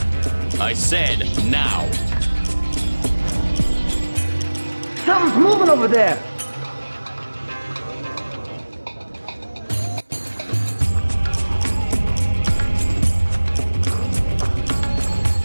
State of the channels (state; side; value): inverted; both; correlation -1.00